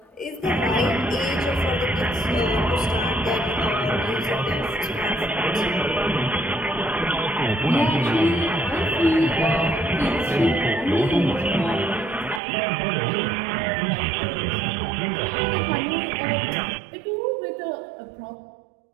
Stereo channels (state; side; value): drops out; left; at 12.4 s